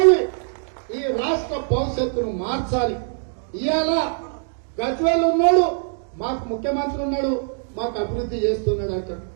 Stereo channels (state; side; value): silent; left; digital silence